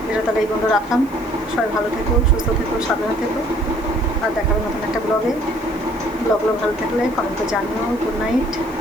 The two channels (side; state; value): right; noise; hiss, 25 dB below the sound